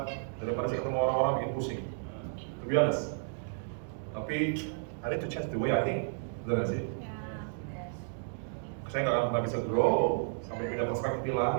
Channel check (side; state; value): left; silent; digital silence